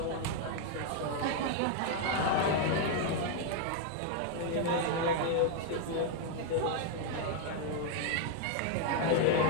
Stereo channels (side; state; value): both; different; correlation 0.00